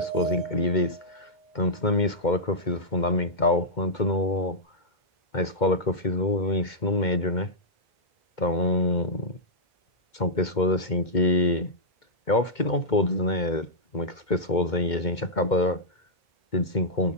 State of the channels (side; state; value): right; late; 2.2 ms